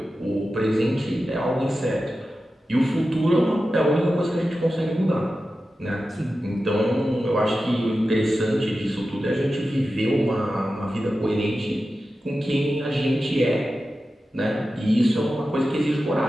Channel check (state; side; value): normal; both; correlation 0.93